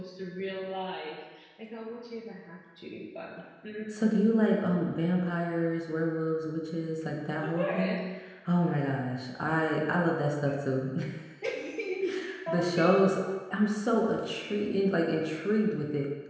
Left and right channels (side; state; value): both; identical; correlation 1.00